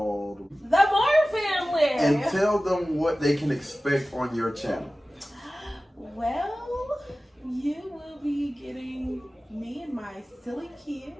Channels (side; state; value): both; normal; correlation 0.96